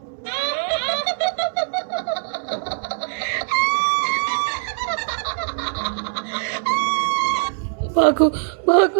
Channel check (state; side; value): silent; left; digital silence